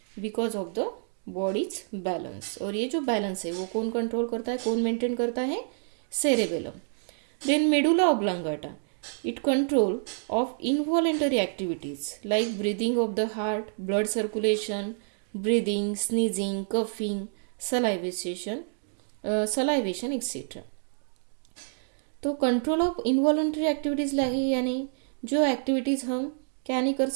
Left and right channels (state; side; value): silent; left; digital silence